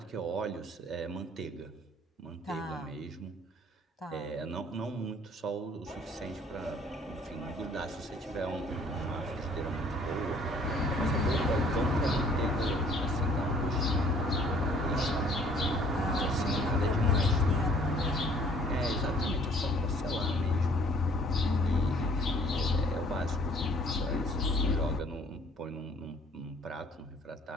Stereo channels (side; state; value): both; normal; correlation 0.56